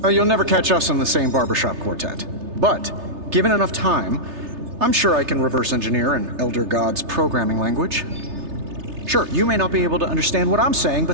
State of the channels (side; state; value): left; late; 3.3 ms